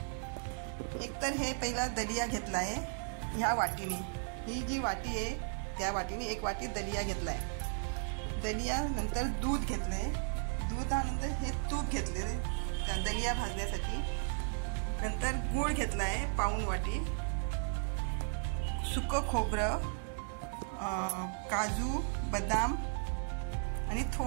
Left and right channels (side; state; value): left; silent; 54 dB below the other